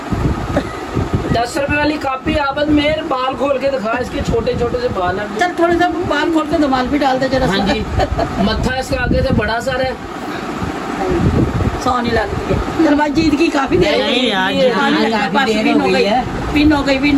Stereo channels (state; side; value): identical; both; correlation 1.00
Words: 10 रुपए वाली कापी आपद मेरे बाल खोल के दिखा, इसके छोटे छोटे से बाल हैं। चल थोड़े सा बाल खोल के दमाल भी डाल दे जरा। हाँ जी मत्था इसका आगे से बड़ा सारा है। सोनी लगती है। चल भाई जीत की काफी देर हो नहीं गई। यार, पिन हो गई